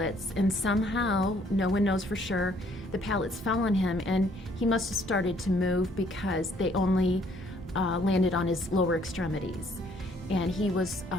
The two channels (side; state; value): both; normal; correlation 0.63